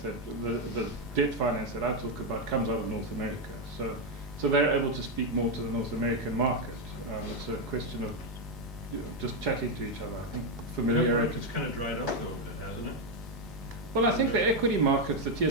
debt finance that I talk about comes out of North America. So they're able to speak more to the North American market. It's a question of just chatting to each other. I think familiarity. It's kind of dried up though a bit, hasn't it? Well, I think the equity markets, the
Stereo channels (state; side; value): normal; both; correlation 0.03